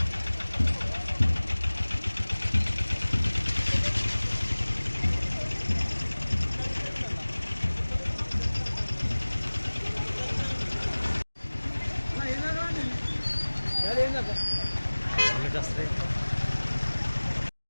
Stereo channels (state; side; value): inverted; both; correlation -1.00